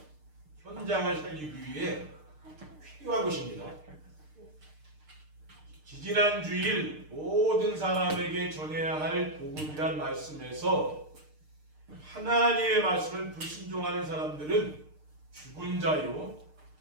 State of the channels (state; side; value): late; left; 6.6 ms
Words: 현장을 살리기 위해 필요한 것입니다. 지지난 주일 모든 사람에게 전해야 할 복음이란 말씀에서 하나님의 말씀을 불순종하는 사람들은 죽은 자요,